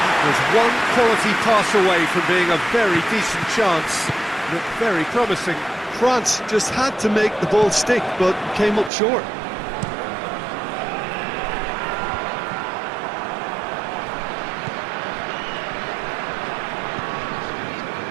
That was one quality pass away from being a very decent chance. Looked very promising. France just had to make the ball stick, but came up short.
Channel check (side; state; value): left; drops out; at 8.9 s